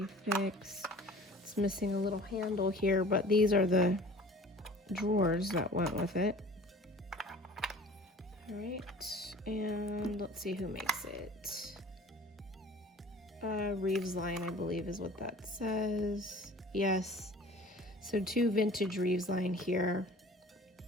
fix. It's missing a little handle here, but these are the drawers that went with it. All right, and let's see who makes it. Reeves line, I believe is what that says. Yes, so two vintage Reeves line here,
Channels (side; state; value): both; normal; correlation 0.45